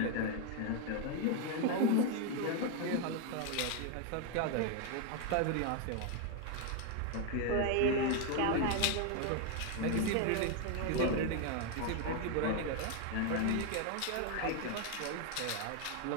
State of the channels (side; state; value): both; different; correlation 0.01